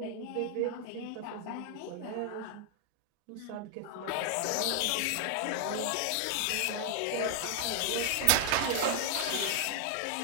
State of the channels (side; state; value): both; different; correlation 0.00